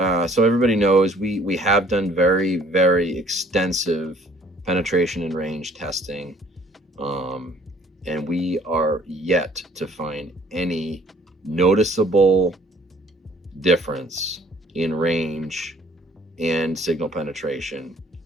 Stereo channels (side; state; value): both; normal; correlation 0.57